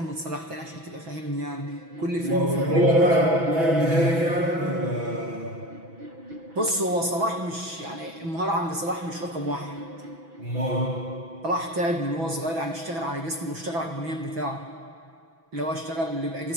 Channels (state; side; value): late; left; 6.1 ms